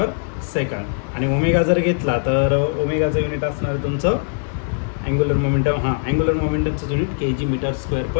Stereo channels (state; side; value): silent; right; digital silence